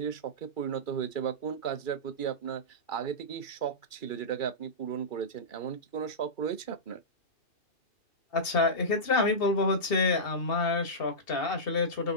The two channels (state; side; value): late; right; 2.7 ms